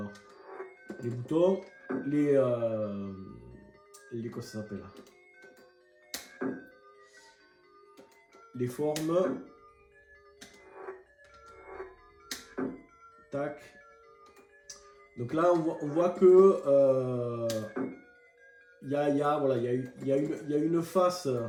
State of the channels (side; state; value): both; identical; correlation 1.00